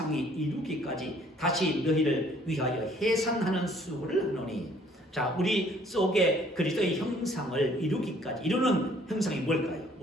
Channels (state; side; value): normal; both; correlation 0.59